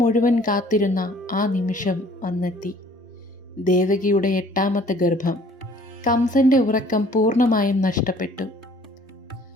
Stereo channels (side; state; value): both; normal; correlation 0.55